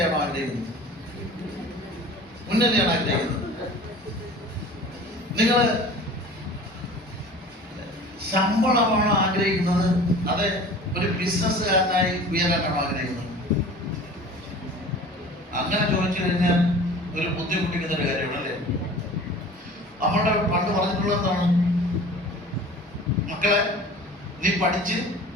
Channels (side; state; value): both; normal; correlation 0.42